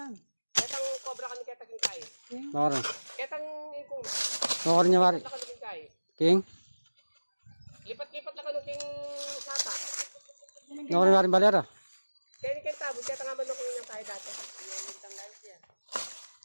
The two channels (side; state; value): both; inverted; correlation -1.00